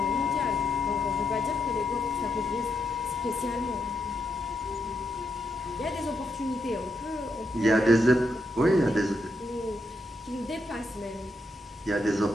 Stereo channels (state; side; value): normal; both; correlation 0.81